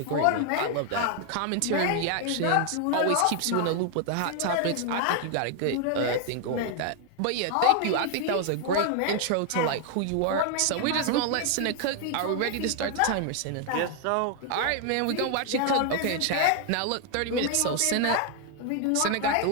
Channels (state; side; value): different; both; correlation 0.00